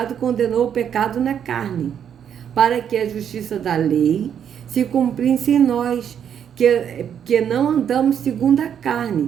condenou o pecado na carne, para que a justiça da lei se cumprisse em nós, que não andamos segundo a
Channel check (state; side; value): quieter; left; 8.6 dB